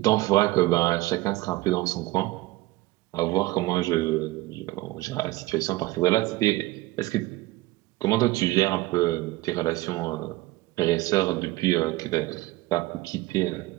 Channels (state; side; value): quieter; left; 19.1 dB